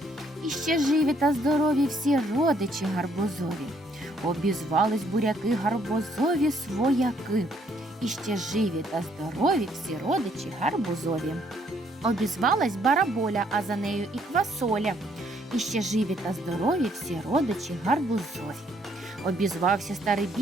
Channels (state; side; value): normal; both; correlation 0.68